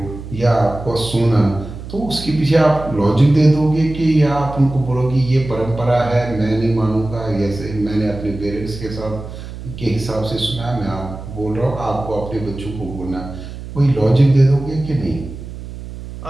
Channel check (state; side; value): noise; right; hum, 11 dB below the sound